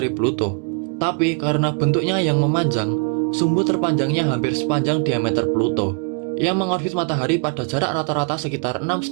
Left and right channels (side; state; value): left; quieter; 36.6 dB